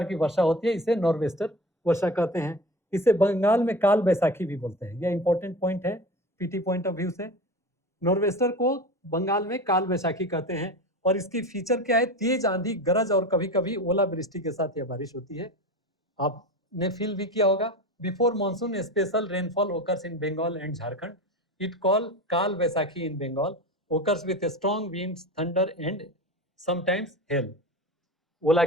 की वर्षा होती है, इसे नॉर्वेस्टर वर्षा कहते हैं। इसे बंगाल में काल बैसाखी भी बोलते हैं। यह इंपॉर्टेंट पॉइंट है पीटी पॉइंट ऑफ व्यू से। नॉर्वेस्टर को बंगाल में काल बैसाखी कहते हैं, और इसकी फीचर क्या है? तेज आंधी, गरज और कभी कभी ओलावृष्टि के साथ यह बारिश होती है। आपने फील भी किया होगा। Before monsoon special rainfall occurs in Bengal and Jharkhand, it call Kal Baisakhi in Bengal, occurs with strong winds, thunder and sometimes hail. ओला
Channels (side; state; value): both; normal; correlation 0.31